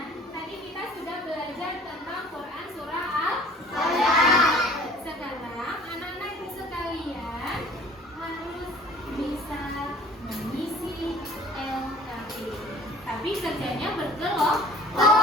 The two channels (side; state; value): both; normal; correlation 0.49